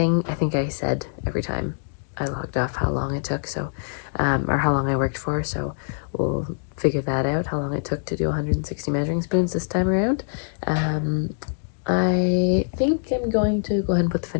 I think I said every time I logged off how long it took, so or how long I worked for, so we'll figure that out, how long it took to do 160 measuring spoons this time around. I think I'm going to go ahead and put the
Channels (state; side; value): silent; right; digital silence